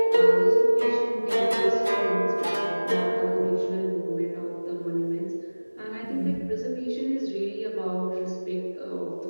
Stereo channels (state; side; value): inverted; both; correlation -1.00